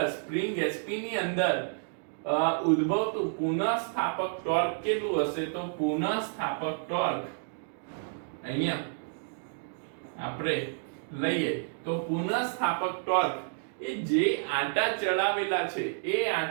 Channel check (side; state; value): left; silent; digital silence